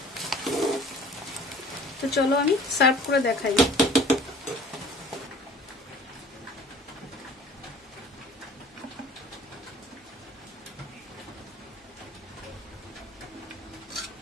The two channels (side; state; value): both; normal; correlation 0.48